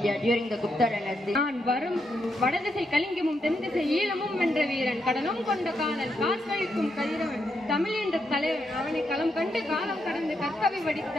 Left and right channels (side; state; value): both; normal; correlation 0.81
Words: during the Gupta dynasty. நான் வரும் வடதிசை கலிங்கமும் தென்திசை ஈழமும் வென்ற வீரன், கடலும் கொண்ட காதல் காசளிக்கும் கதிரவன், தமிழ் என்ற தலைவன், அவனை களம் கண்டு காலம் கடந்து கற்கவை வடித்த